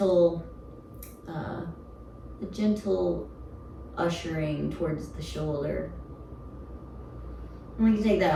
ushering towards the shoulder. And we can take that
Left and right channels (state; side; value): identical; both; correlation 1.00